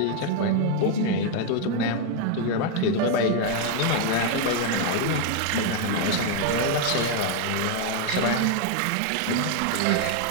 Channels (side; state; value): both; different; correlation 0.00